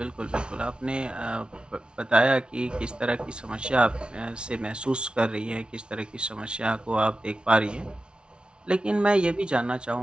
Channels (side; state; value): left; late; 0.056 ms